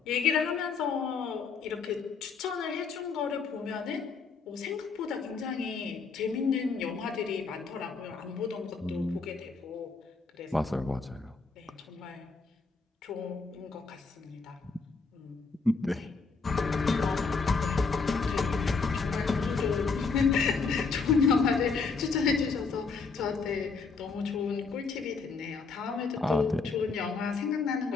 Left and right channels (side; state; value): right; quieter; 4.7 dB